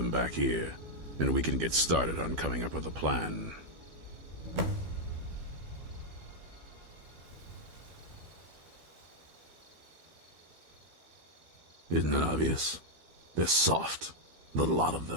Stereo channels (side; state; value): left; late; 12 ms